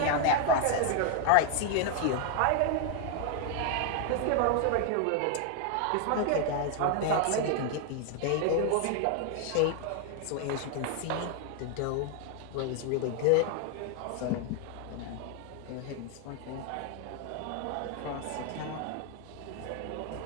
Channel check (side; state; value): both; different; correlation 0.00